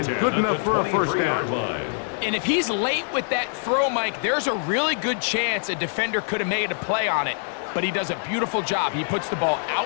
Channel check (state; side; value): silent; right; digital silence